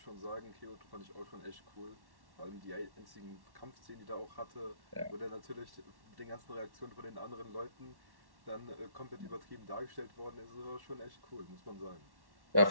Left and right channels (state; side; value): late; left; 1.1 ms